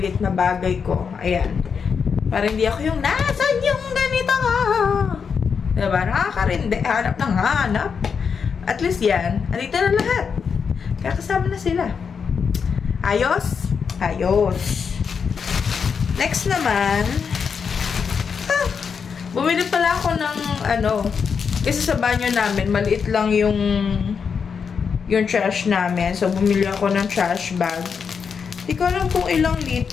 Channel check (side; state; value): right; quieter; 6.2 dB